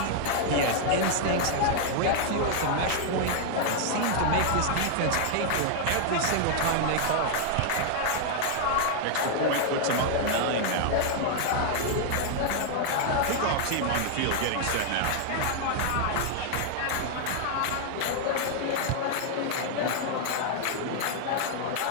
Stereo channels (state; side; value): different; both; correlation 0.00